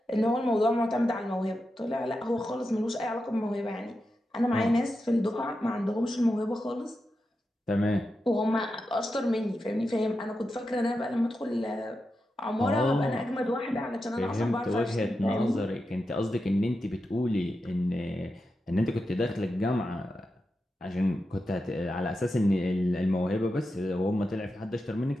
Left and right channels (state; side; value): normal; both; correlation 0.89